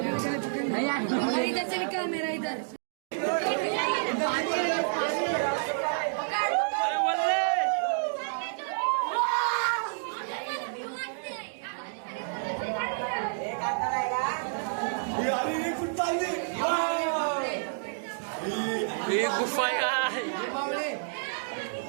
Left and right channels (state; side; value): silent; left; digital silence